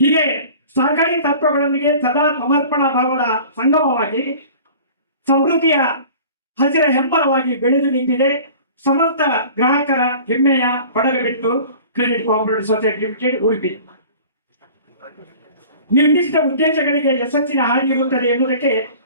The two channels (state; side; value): inverted; both; correlation -0.44